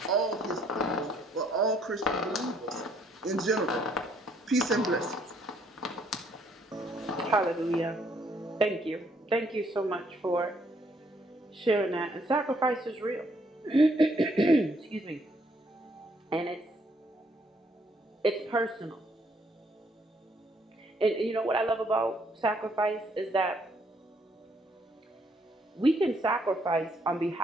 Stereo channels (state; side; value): normal; both; correlation 0.68